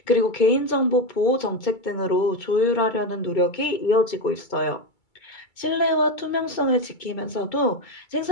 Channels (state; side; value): late; right; 2.3 ms